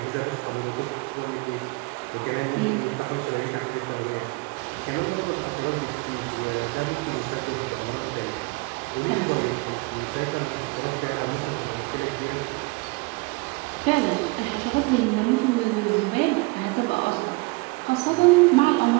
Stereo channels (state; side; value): quieter; left; 26.1 dB